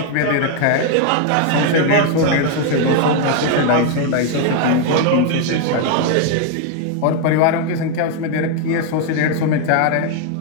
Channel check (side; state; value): both; different; correlation 0.00